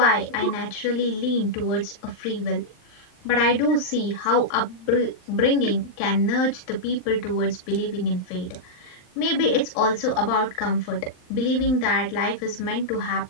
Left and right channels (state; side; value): late; right; 39 ms